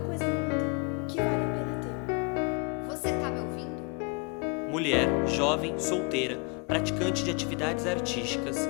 no mundo que vale a pena ter. Você tá me ouvindo? Mulher, jovem, solteira, praticante de atividades artísticas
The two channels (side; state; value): right; quieter; 34.1 dB